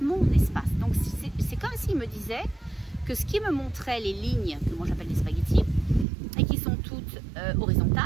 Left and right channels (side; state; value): left; drops out; at 6.1 s